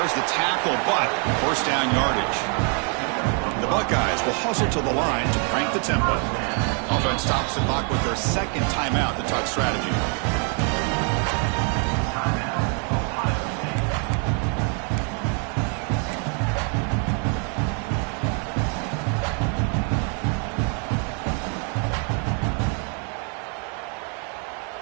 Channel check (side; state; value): left; quieter; 39.1 dB